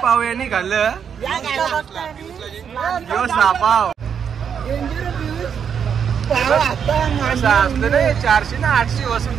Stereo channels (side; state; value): left; quieter; 7.5 dB